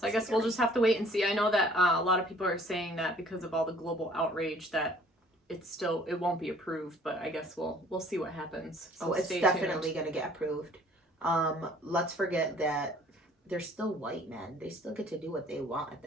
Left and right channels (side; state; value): both; normal; correlation 0.55